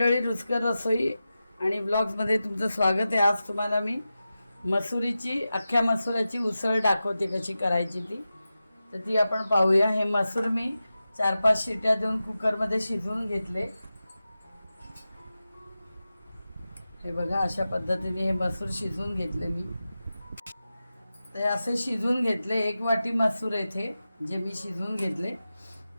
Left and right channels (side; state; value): both; inverted; correlation -0.93